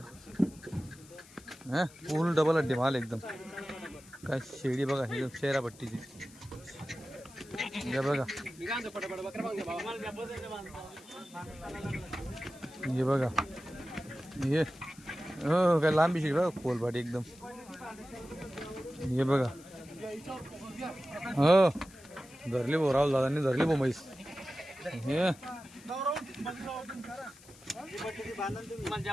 फुल डबल हड्डी माल एकदम. काय शेडी बघा एकदम चेहरा पट्टीची. हे बघा. हे बघा ये हो काय लांबी शेडी बघा खोलपाटी एकदम. हे बघा हो धरली भाऊ. राहुल दादांनी धरली भाऊ म्हैस. हे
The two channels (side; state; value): left; noise; hiss, 22 dB below the sound